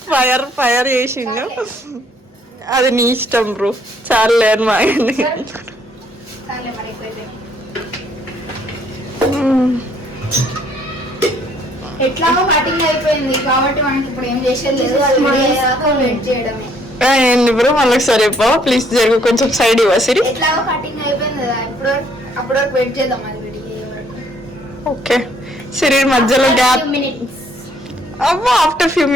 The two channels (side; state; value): both; normal; correlation 0.65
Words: ఫైర్ ఫైర్ చేసిండు. అది నీ ఇష్టం బ్రో. చాలే అని మా ఆయన్ని. ఎట్లాగో కటింగ్ అయిపోయింది కాబట్టి మనకి ఇప్పుడు ఏం చేసేది లేదు. వెయిట్ చేయడమే. ఏంది బ్రో మళ్ళీ ఒకసారి చెప్పవా ప్లీజ్? జరుగు కొంచెం సైడ్ ఇవ్వ సిరి. ఎట్లాగో కటింగ్ అయిపోయింది కదా, ఇప్పుడు అప్పటి వరకు వెయిట్ చేద్దాం. అది విడిగే వరకు. ఓకే సిరి మధ్యలో గ్యాప్. అవ్వా ఆఫ్టర్ ఫ్యూ